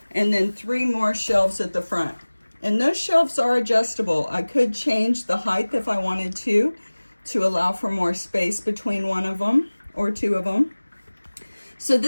And then 3 more shelves at the front. And those shelves are adjustable. I could change the height if I wanted to allow for more space between one of them or 2 of them. So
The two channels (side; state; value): both; inverted; correlation -1.00